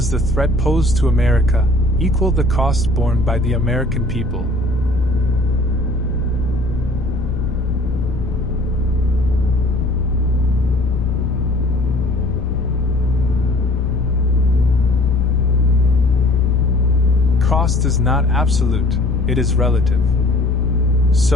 the threat posed to America equal the cost borne by the American people? Cost is not absolute, it is relative.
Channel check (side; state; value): left; noise; rumble, 8 dB below the sound